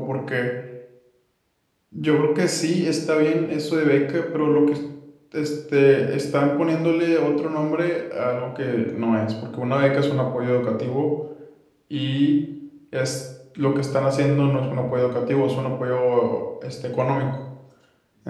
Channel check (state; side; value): identical; both; correlation 1.00